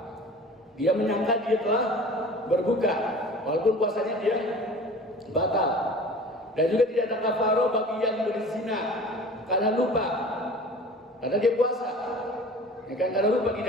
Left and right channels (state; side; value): normal; both; correlation 0.42